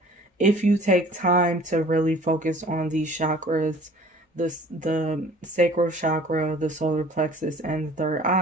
if you take time to really focus on these chakras, the sacral chakra, the solar plexus, and the third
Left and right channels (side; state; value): both; normal; correlation 0.49